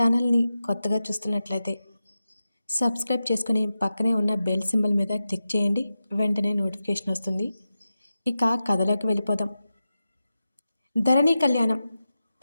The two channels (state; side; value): inverted; both; correlation -0.92